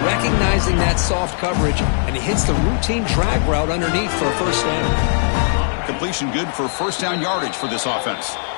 recognizing that soft coverage, and he hits the routine drag route underneath for a first down. Completion good for 1st down yardage for this offense.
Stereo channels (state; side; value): silent; right; digital silence